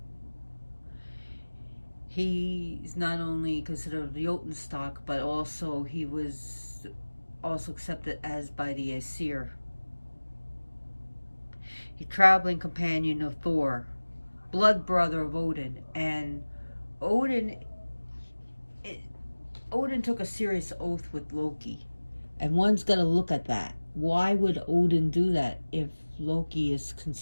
He's not only considered the Jotun stock, but also he was also accepted as by the Aesir. He's traveling companion of Thor, blood brother of Odin, and Odin took a serious oath with Loki. And one's got to look at that. Why would Odin do that if Loki is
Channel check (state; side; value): inverted; both; correlation -1.00